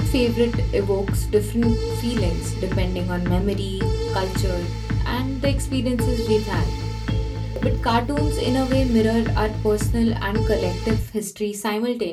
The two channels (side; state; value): both; identical; correlation 1.00